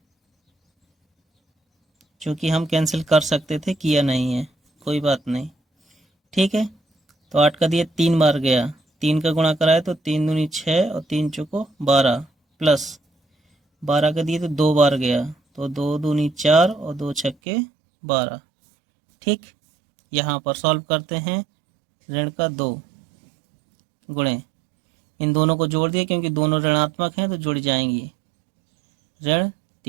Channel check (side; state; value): left; drops out; at 17.4 s